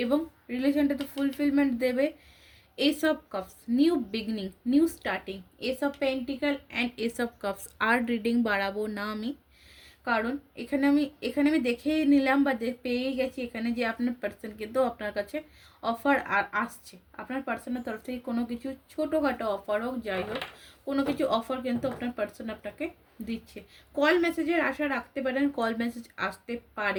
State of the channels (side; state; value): both; identical; correlation 1.00